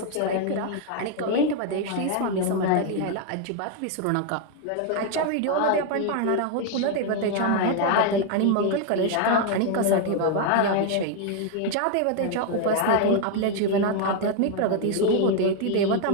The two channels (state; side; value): different; both; correlation 0.01